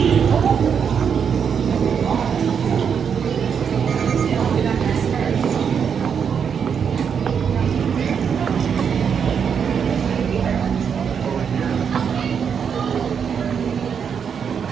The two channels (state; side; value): quieter; left; 7.1 dB